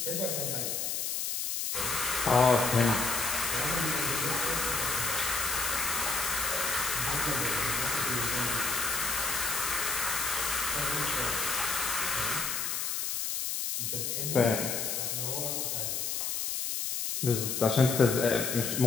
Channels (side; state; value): left; noise; hiss, 1 dB below the sound